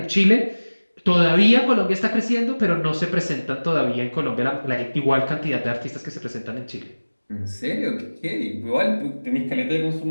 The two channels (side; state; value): both; inverted; correlation -1.00